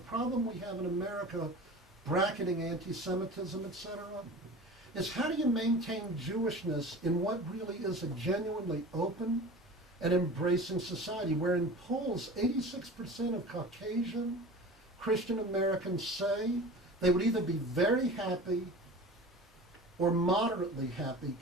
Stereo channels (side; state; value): both; normal; correlation 0.37